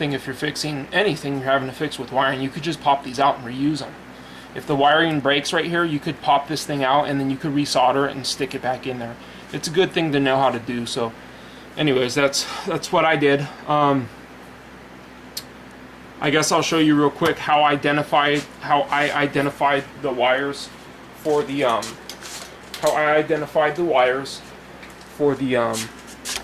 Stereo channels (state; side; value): identical; both; correlation 1.00